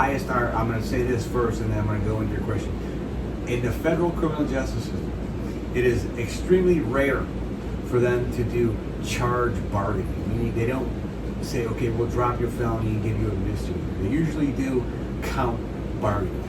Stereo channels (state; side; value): identical; both; correlation 1.00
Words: our. I'm going to say this first, and then I'm going to go into your question. In the federal criminal justice system, it is extremely rare for them to do charge bargaining. Meaning they don't say, okay, we'll drop your felony and give you a misdemeanor. They usually do count bargaining.